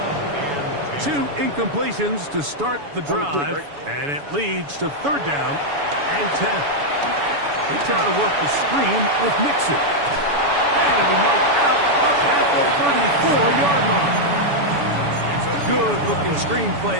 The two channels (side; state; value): left; late; 7.0 ms